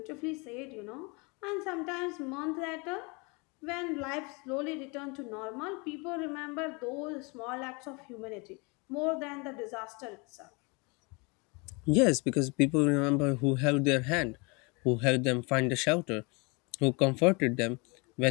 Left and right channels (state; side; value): quieter; right; 29.4 dB